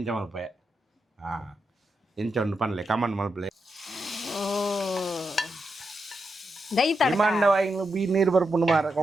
ಮಲ್ಪೆ ಇಂಚ ಉಂಡು ಪನ್ಲೆ ಕಮಂಡ್ ಮಲ್ಪಲೆ ದೈ ತಡಕ ಇಮಾಂಡ ವಾಯಿಗಳು ಬೀ ನೀರು ಬರ್ಪುಂಡು ಮಾರ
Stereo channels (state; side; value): normal; both; correlation 0.85